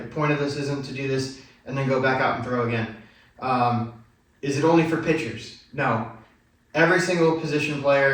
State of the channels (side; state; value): both; identical; correlation 1.00